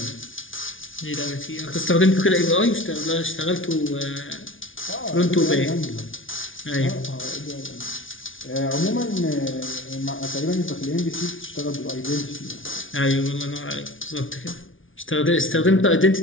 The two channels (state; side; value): late; right; 0.57 ms